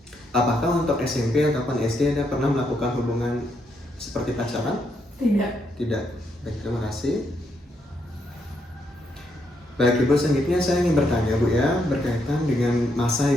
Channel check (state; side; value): normal; both; correlation 0.77